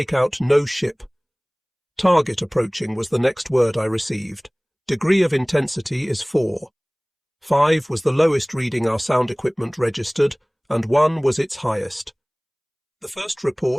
out no ship. "Target approaching" was the next word I received. "Degree of intensity is 4. 5 was the lowest reading our sound equipment registered, and 1 was its highest. The first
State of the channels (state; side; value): identical; both; correlation 1.00